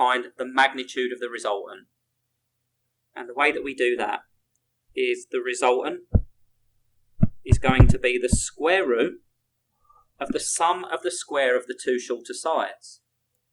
the magnitude of the resultant. And the way that we do that is the resultant is going to be the square root of the sum of the square of the two shorter sides.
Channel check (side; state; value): both; identical; correlation 1.00